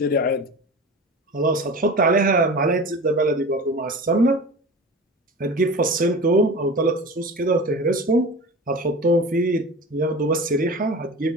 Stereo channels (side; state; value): both; normal; correlation 0.33